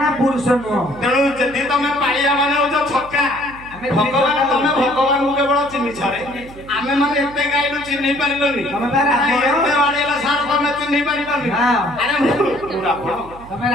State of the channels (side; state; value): right; noise; hum, 19 dB below the sound